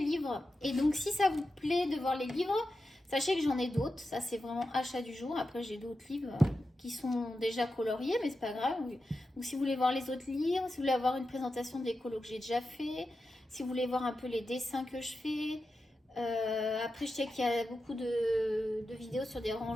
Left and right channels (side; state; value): both; normal; correlation 0.90